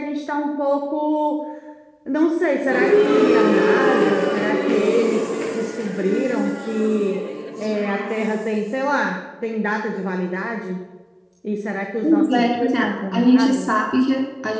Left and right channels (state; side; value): identical; both; correlation 1.00